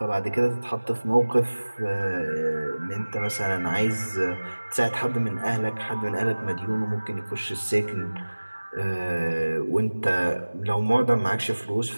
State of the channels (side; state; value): both; inverted; correlation -1.00